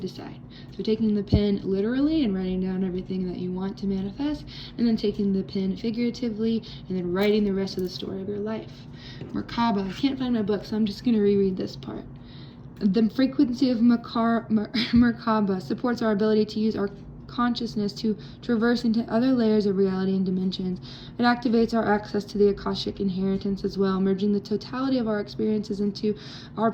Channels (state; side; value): identical; both; correlation 1.00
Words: So taking the pen literally and writing down everything that you want to manifest, and then taking the pen figuratively, and then writing the rest of the story of your life. Merkaba. I can't find my book, so I'm just going to reread this part. The frequency of Merkaba supports our ability to use our consciousness to traverse into other layers of reality and dimensions. It activates our access to the Akashic inheritance as well, merging the totality of our experiences into our